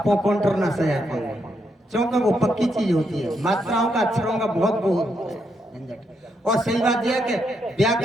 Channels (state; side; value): normal; both; correlation 0.79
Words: काउंटर ना सजा पाएंगे, क्योंकि वो पक्की चीज होती है। मात्राओं का, अक्षरों का बहुत झंझट। और सही बात यह है कि